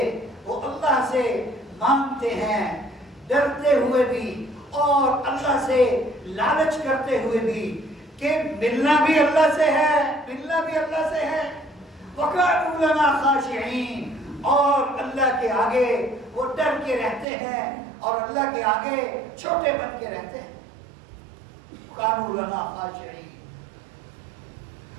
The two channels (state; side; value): drops out; left; at 17.2 s